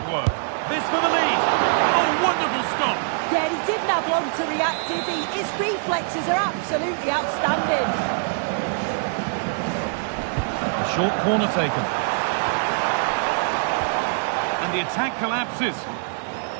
work. This for the lead. Oh, wonderful stop. Yeah, he didn't have long to react, did he? His reflexes are absolutely outstanding. A short corner taken. And the attack collapses.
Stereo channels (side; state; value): left; silent; 63 dB below the other